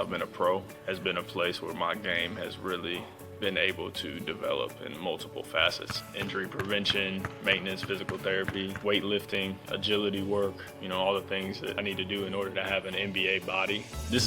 been a pro, has been a place where my game has really been able to develop in multiple facets. Injury prevention, maintenance, physical therapy, weightlifting, agility work, all the things that I need to do in order to have an NBA body. This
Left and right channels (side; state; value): both; identical; correlation 1.00